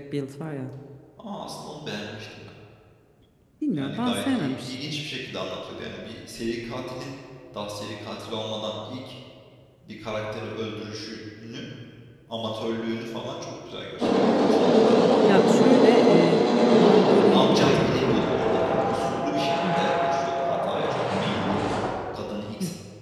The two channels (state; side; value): identical; both; correlation 1.00